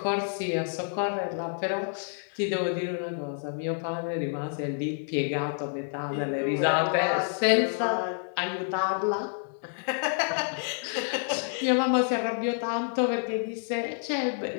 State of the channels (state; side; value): silent; right; 59 dB below the other